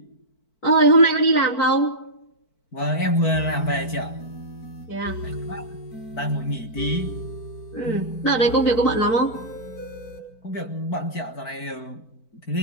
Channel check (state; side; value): late; right; 4.5 ms